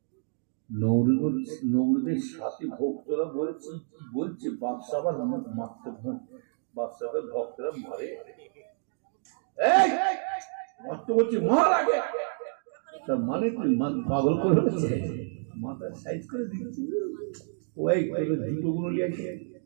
নৌরুদের সাথে ভক্তরা বলছে বাদশাহ আবার মারতে বাদশাহের ভক্তরা মারে মারতে বলছে মার আগে, তার মানে তুই পাগল করে মাথা সাইজ করে দিচ্ছি। ওই জুতো গুলো নিয়ে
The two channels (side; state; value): left; silent; digital silence